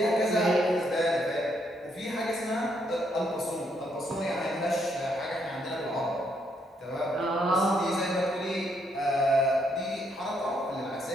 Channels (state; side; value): normal; both; correlation 0.74